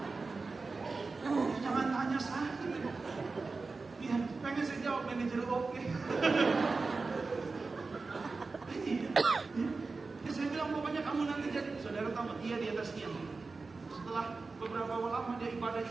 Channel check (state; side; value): quieter; left; 4.0 dB